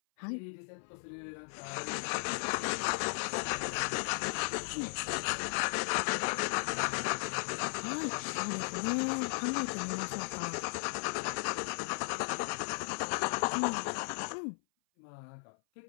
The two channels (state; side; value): silent; right; 54 dB below the other